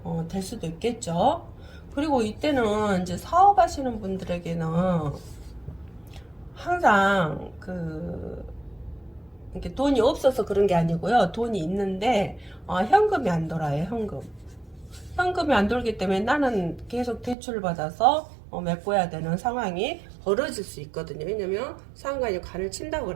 될 수도 있겠죠. 그리고 이때는 이제 사업하시는 분들에게는 항상 이렇게 돈이 없어서 그런 게 아니고요. 돈이 있는데 현금이 안 돌아요. 현금이 안 돌기 때문에 나는 계속 대출을 받아서 메꿔야 되는 상황이 벌어질 수 있거든요. 왜냐면 상관이 관을 친다고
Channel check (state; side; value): drops out; left; at 17.4 s